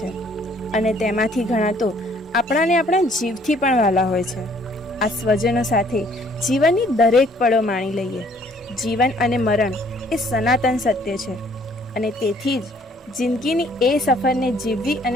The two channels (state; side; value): normal; both; correlation 0.61